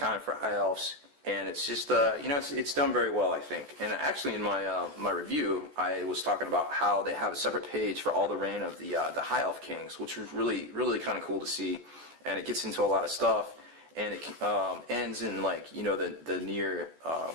for high elves. And it's just, it's done very well, I think. And actually, in my review, I was talking about how they have a separate page for all the reign of the High Elf Kings, which was really kind of cool to see. And it gets into a lot of stuff, and it ends in the near,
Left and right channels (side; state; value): left; late; 14 ms